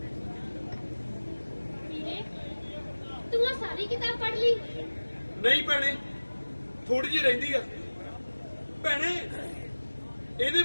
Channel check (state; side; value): inverted; both; correlation -1.00